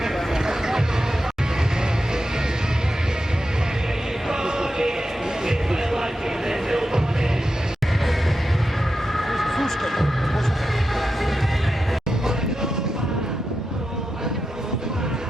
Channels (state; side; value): normal; both; correlation 0.89